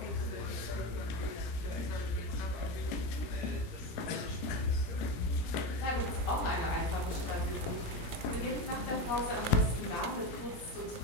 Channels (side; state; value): right; late; 17 ms